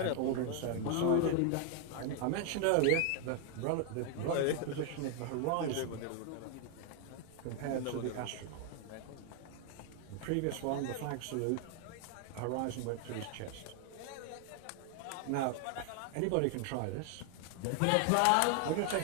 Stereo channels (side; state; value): both; different; correlation 0.00